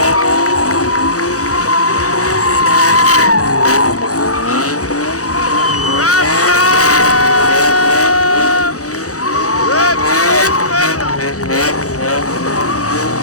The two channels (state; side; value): late; right; 0.66 ms